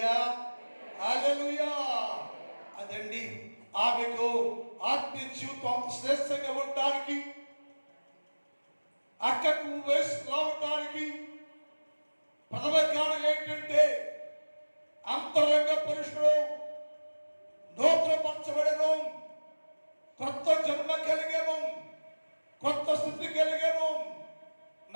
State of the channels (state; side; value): inverted; both; correlation -1.00